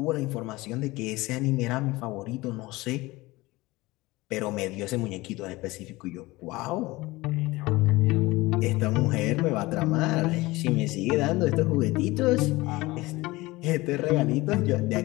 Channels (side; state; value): right; quieter; 20.7 dB